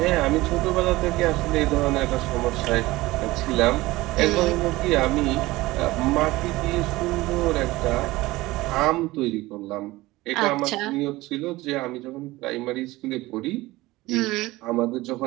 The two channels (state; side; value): quieter; left; 19.2 dB